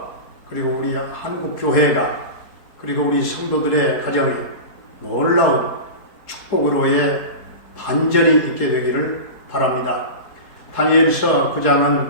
그리고 우리 한국 교회가 그리고 우리 성도들의 가정에 놀라운 축복으로의 반전이 있게 되기를 바랍니다. 다니엘서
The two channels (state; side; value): late; right; 4.3 ms